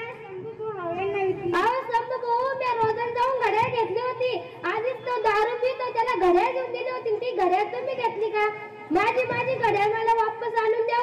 शंभू भावांना विकली. अहो शंभू भाऊ, मी रोजन जाऊन घड्याळ घेतली होती. आधीच तो दारू पितो, त्याला घड्याळ घेऊन दिली होती. ती घड्याळ तुम्ही घेतली का? माझी घड्याळ मला वापस आणून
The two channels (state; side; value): identical; both; correlation 1.00